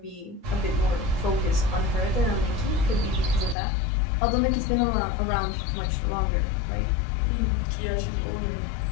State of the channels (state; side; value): drops out; right; at 3.6 s